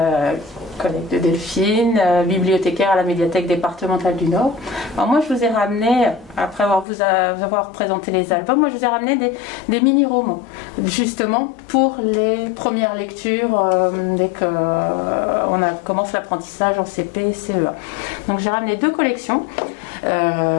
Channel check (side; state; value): right; drops out; at 6.9 s